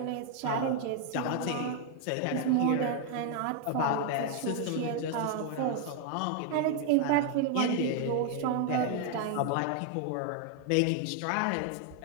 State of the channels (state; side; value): different; both; correlation 0.00